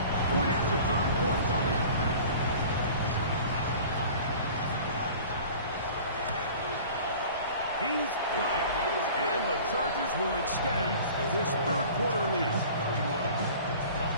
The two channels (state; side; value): inverted; both; correlation -0.43